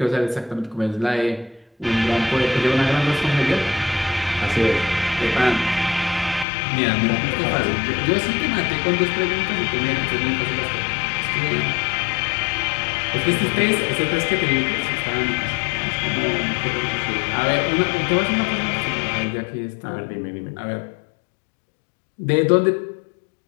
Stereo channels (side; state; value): right; drops out; at 6.5 s